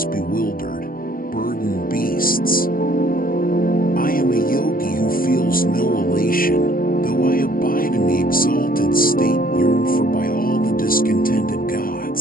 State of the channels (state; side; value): late; right; 0.41 ms